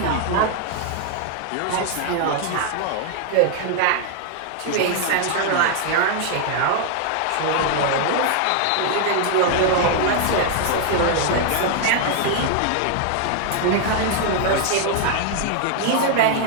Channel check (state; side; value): different; both; correlation 0.00